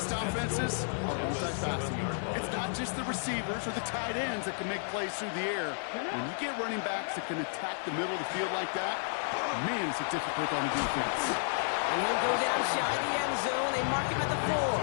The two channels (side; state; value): right; silent; digital silence